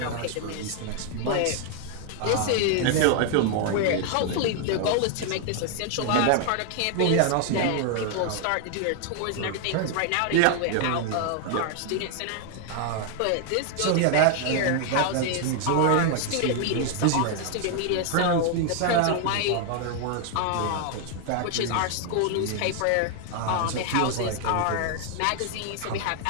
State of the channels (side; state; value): both; different; correlation 0.00